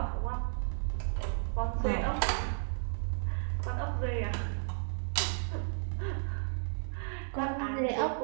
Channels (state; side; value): silent; left; digital silence